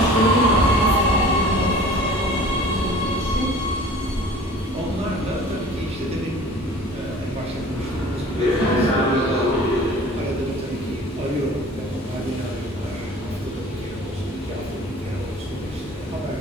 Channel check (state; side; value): normal; both; correlation 0.45